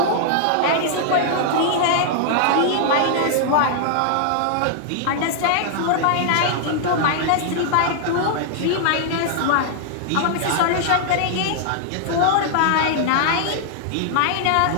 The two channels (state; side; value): different; both; correlation -0.01